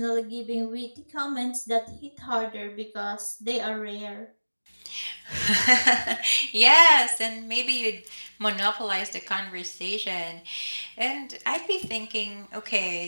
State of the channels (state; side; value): inverted; both; correlation -1.00